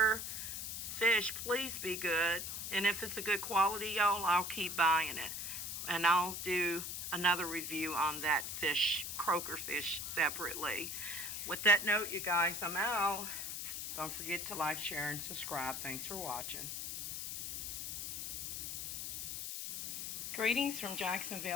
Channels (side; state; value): left; noise; hiss, 4 dB below the sound